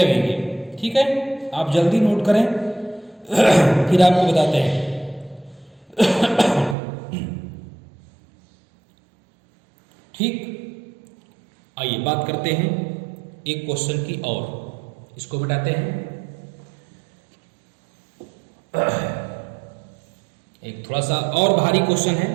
ठीक है, आप जल्दी नोट करें फिर आपको बताते हैं। ठीक, आइए बात करते हैं एक क्वेश्चन की और, इसको बताते हैं। एक थोड़ा सा और भारी क्वेश्चन है,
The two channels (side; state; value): left; drops out; at 6.8 s